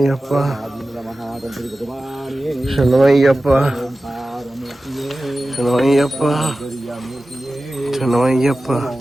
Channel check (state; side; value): normal; both; correlation 0.95